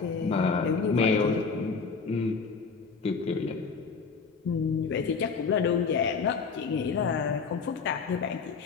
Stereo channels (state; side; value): quieter; right; 5.1 dB